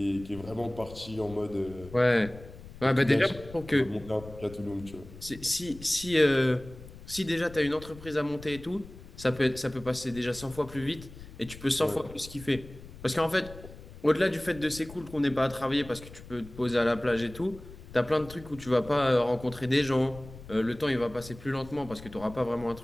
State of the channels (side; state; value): left; noise; rumble, 16 dB below the sound